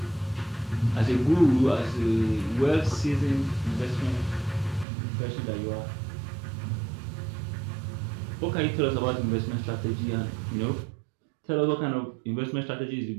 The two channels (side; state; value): left; drops out; at 4.9 s